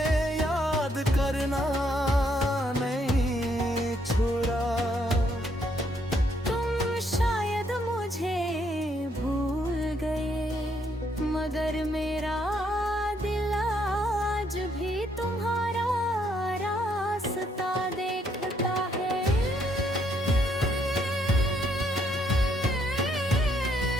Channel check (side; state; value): both; normal; correlation 0.71